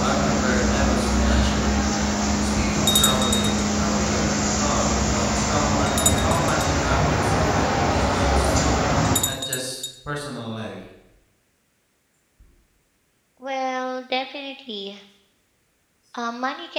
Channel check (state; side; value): identical; both; correlation 1.00